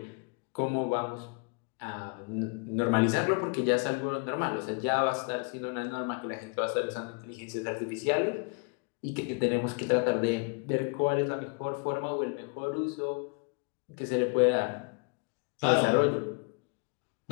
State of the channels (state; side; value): quieter; right; 33.9 dB